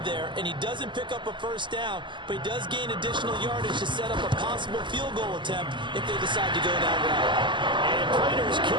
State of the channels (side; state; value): left; late; 0.23 ms